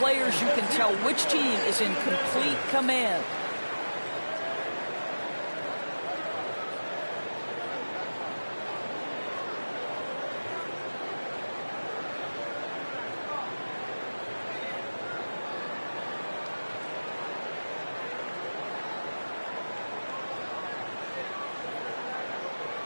you can tell which team is in complete command.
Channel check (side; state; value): both; inverted; correlation -1.00